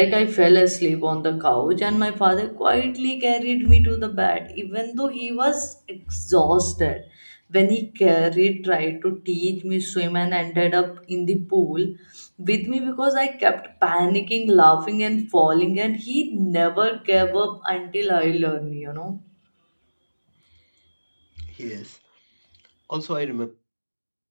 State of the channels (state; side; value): inverted; both; correlation -1.00